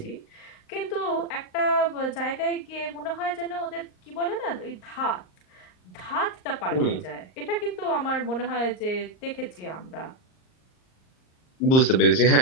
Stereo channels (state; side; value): late; right; 38 ms